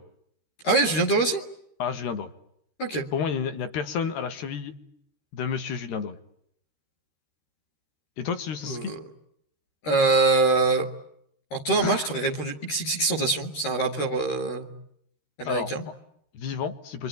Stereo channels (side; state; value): right; late; 13 ms